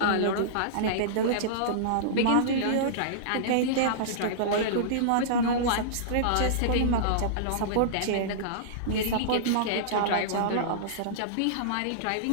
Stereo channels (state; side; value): different; both; correlation -0.03